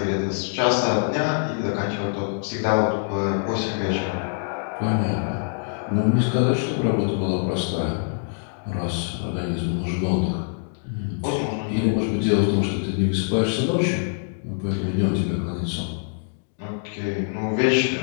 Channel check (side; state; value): right; silent; digital silence